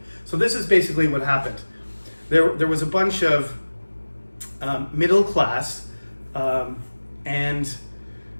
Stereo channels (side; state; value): both; inverted; correlation -1.00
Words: So this is basically what happened. There was a bunch of middle class and